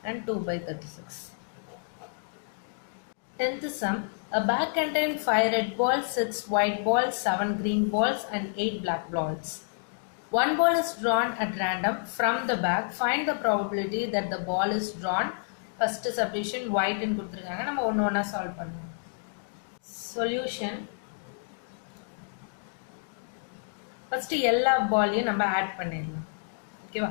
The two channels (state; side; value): silent; right; digital silence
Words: and 2 by 36. 10th sum. A bag contained 5 red balls, 6 white balls, 7 green balls and 8 black balls. One ball is drawn at random from the bag. Find the probability that the ball is drawn. First subdivision white ன்னு கொடுத்திருக்காங்க. நம்ம ஒண்ணு ஒண்ணா solve பண்ணலாம். Solution. First எல்லா பால்லையும் நம்ம add பண்ணிடலாம். ஓகேவா?